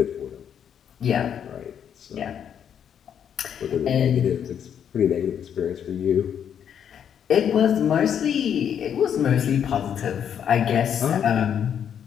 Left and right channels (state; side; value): quieter; right; 8.6 dB